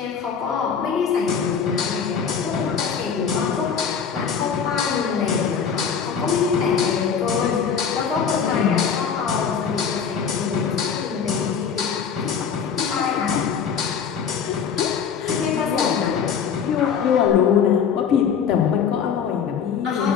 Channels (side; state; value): right; quieter; 6.9 dB